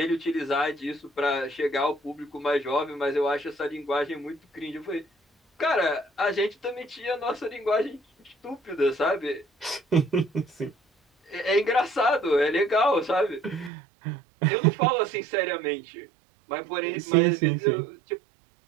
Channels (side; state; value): left; drops out; at 13.7 s